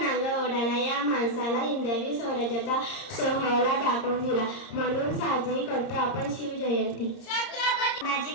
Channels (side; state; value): right; late; 30 ms